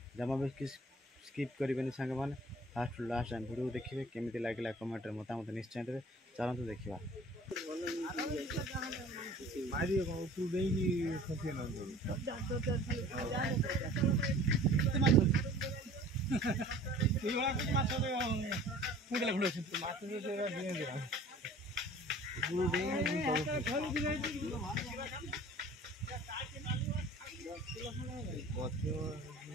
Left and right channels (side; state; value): both; normal; correlation 0.47